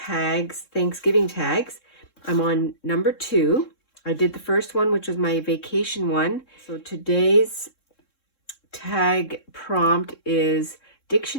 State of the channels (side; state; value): right; late; 3.7 ms